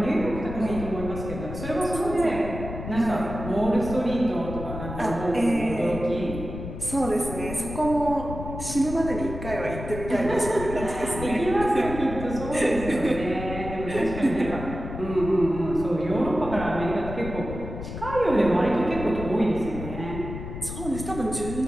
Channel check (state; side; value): noise; left; rumble, 8 dB below the sound